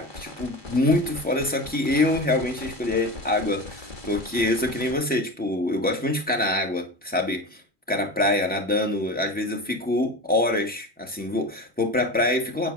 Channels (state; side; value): normal; both; correlation 0.28